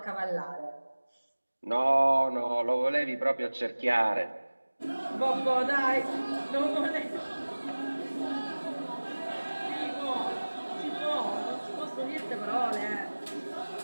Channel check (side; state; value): both; inverted; correlation -1.00